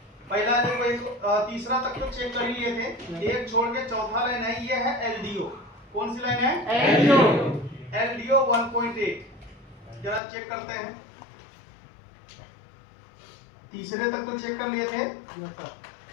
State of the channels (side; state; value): right; drops out; at 10.2 s